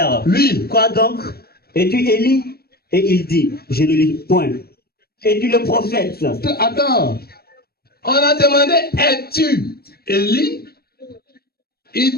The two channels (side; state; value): right; late; 0.45 ms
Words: lui, quoi donc? Es-tu Élie? Et il dit, je ne lis point. Es-tu le prophète? Attends. On a demandé, es-tu Élie? Il